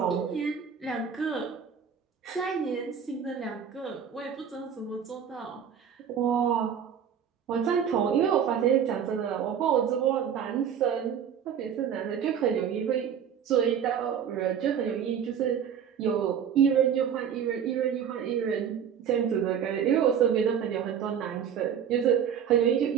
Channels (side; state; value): left; quieter; 8.1 dB